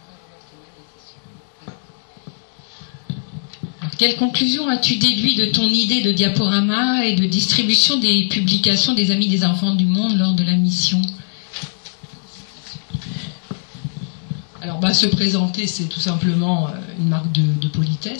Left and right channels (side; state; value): right; silent; digital silence